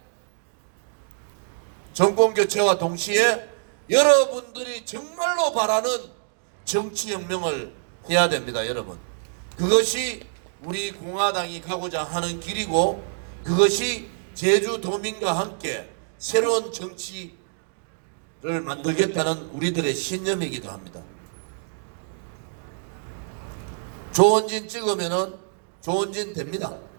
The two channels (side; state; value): left; silent; digital silence